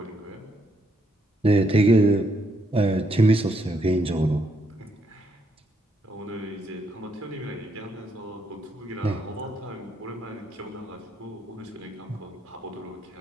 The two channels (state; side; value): normal; both; correlation 0.75